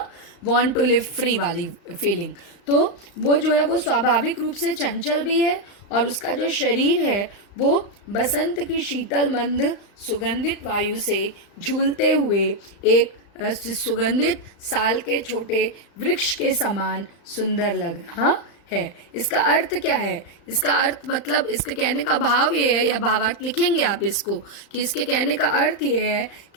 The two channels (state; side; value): late; right; 35 ms